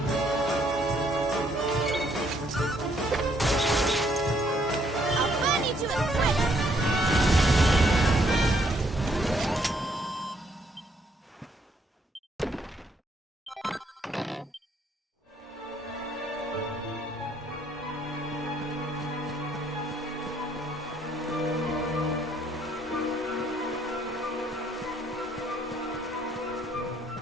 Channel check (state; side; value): normal; both; correlation 0.68